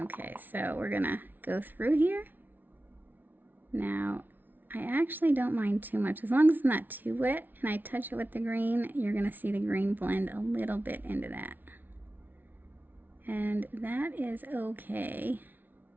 so we're gonna go through here. Now, I actually don't mind too much. As long as it's not too wet and I touch it with the green, you're gonna see the green blend a little bit into that. And that is okay.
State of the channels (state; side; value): late; left; 0.087 ms